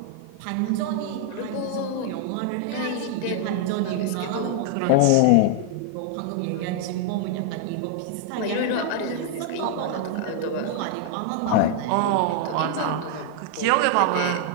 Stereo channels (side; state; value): both; different; correlation 0.00